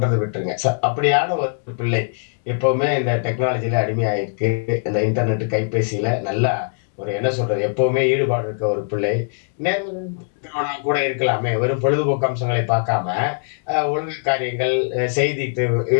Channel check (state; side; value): silent; right; digital silence